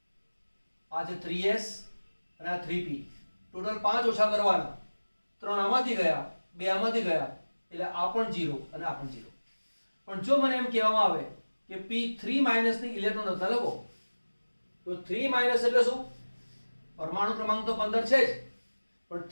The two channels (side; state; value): both; inverted; correlation -1.00